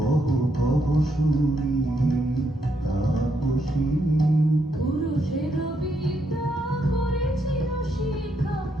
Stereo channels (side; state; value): both; normal; correlation 0.77